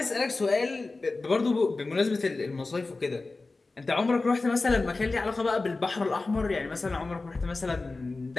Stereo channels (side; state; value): right; quieter; 3.5 dB